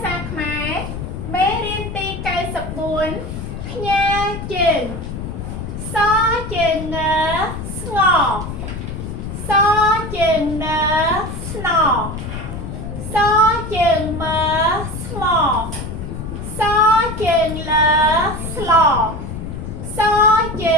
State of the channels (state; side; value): noise; left; rumble, 7 dB below the sound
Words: សាខ្មែរមេរៀនទី94ផ្ញើជើងសជើងងស្ងសជើងនស្នសជើងមើស្មសជើងលើស្លសជើ